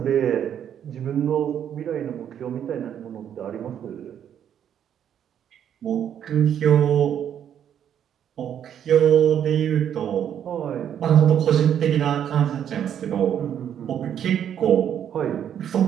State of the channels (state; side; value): quieter; left; 9.4 dB